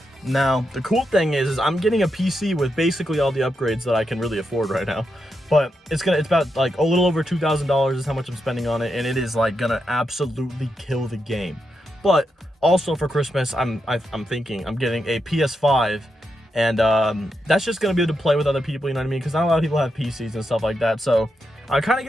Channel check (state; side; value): normal; both; correlation 0.85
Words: Now, the cool thing is I'm getting a PC with basically all the upgrades that I can really afford right now. But it's about like a little over $2,000 is how much I'm spending on it, and it is like gonna absolutely kill the game. But also for Christmas, I'm thinking I'm getting a PS5, and that's just gonna be able to play with other people, you know what I mean? Because not a lot of people have PCs and stuff like that. So I kind of